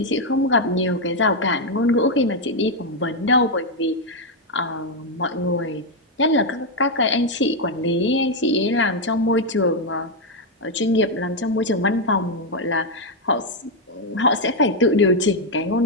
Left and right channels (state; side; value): normal; both; correlation 0.02